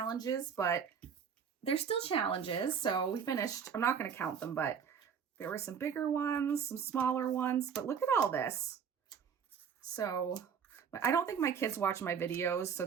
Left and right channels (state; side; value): quieter; left; 7.2 dB